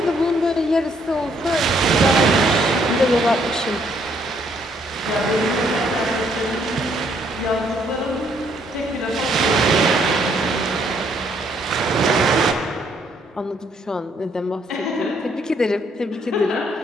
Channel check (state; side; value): normal; both; correlation 0.68